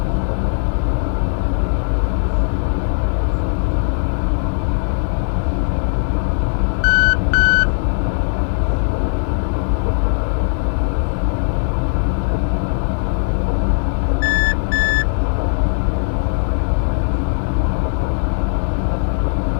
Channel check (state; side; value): silent; right; 67 dB below the other